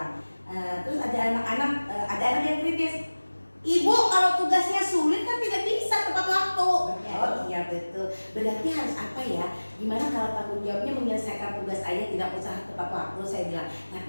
Terus ada anak yang kritis. Ibu, kalau tugasnya sulit kan tidak bisa tepat waktu. Oh iya betul. Berarti harus apa ya? Gimana kalau tanggung jawabnya menyelesaikan tugas aja, tidak usah tepat waktu, saya bilang. Tapi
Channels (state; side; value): inverted; both; correlation -1.00